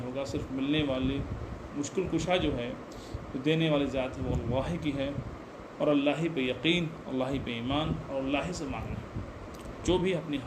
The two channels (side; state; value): both; identical; correlation 1.00